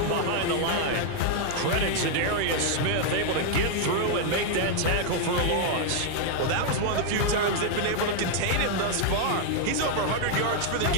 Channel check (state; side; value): different; both; correlation 0.00